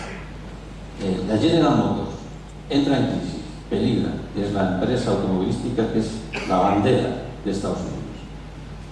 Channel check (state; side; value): identical; both; correlation 1.00